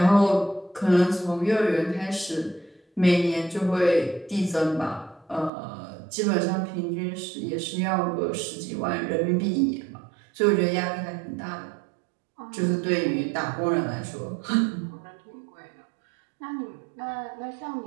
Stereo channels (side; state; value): left; drops out; at 5.5 s